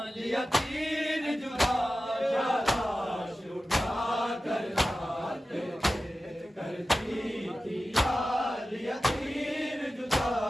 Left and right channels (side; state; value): both; normal; correlation 0.94